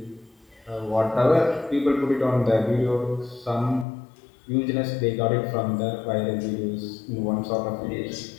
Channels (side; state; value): right; drops out; at 3.9 s